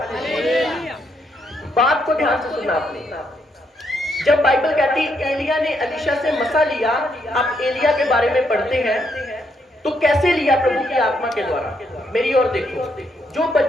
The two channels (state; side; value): normal; both; correlation 0.76